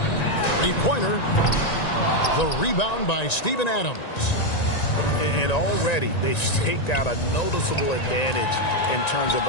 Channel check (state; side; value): late; right; 1.9 ms